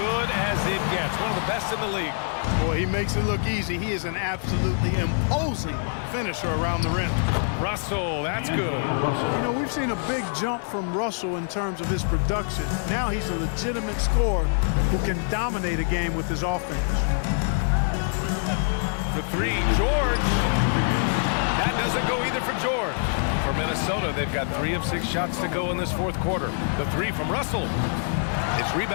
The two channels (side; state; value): right; silent; 62 dB below the other